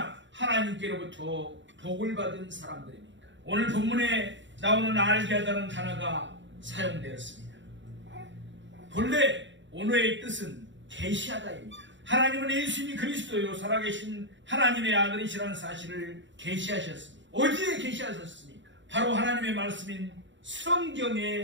하나님께로부터 복을 받은 사람들입니까? 오늘 본문에 나오는 알게 하다는 단어가 사용되었습니다. 본래 언어의 뜻은 계시하다입니다. 하나님은 예수님이 그리스도요 살아계신 하나님의 아들이시라는 사실을 계시하셨습니다. 어디에 계시하셨습니까? 바로 하나님의 말씀인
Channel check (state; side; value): late; left; 0.54 ms